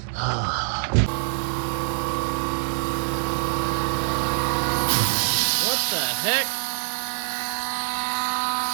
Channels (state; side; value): silent; left; digital silence